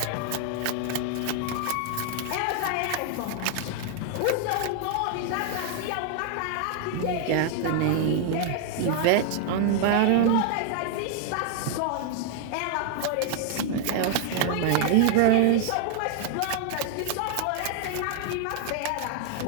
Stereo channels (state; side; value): different; both; correlation 0.00